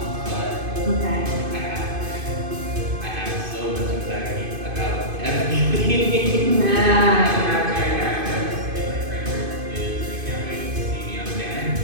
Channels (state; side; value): late; left; 2.5 ms